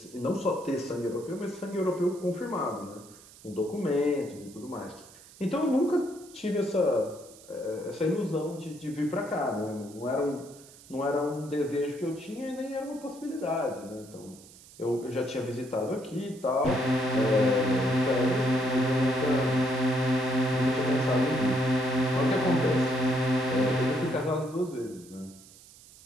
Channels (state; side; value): noise; right; hiss, 22 dB below the sound